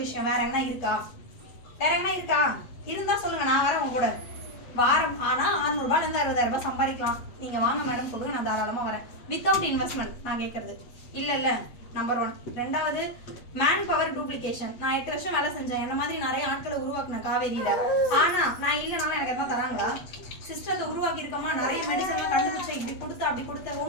விஷயம். வேற என்ன இருக்கா? இருந்தா சொல்லுங்க, நான் வரேன் உங்க கூட. வாரம் ஆனா 600 ரூபாயில இருந்து 60,000 ரூபாய் சம்பாதிக்கலாம். நீங்க வாங்க மேடம் சொல்லுங்க, நான் தாராளமா வரேன். வித்தவுட் இன்வெஸ்ட்மெண்ட் நான் கேட்கறது இல்ல. நம்பர் 1. ரெண்டாவது, மேன் பவர் டூப்ளிகேஷன். நான் 8 வருஷம் வேலை செஞ்சேன். என்ன மாதிரி நிறைய ஆட்களை உருவாக்குனேன் காவேரியில. ஆனா நான் இல்லைனாலும் எனக்கு எதாவது தராங்களா? சிஸ்டத்தை உருவாக்கி இருக்கோமா, நிறைய மெடிசன்லாம் கண்டுபிடிச்சேன், இப்படி கொடுத்த அப்படி கொடுத்த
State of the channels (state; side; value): late; right; 8.2 ms